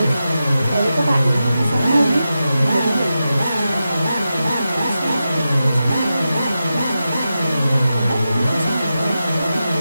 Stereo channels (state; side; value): inverted; both; correlation -0.91